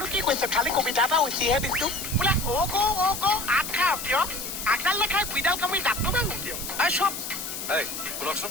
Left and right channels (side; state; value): left; noise; hiss, 6 dB below the sound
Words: কি কৈছো খালি কবিতা এটা উচিহে দিছো বোলে আগ খাও কিয় আগডাল লেখাই গুইডাল কামি দাঁতটো ভাঙো কিয় চব এই শুনকচোন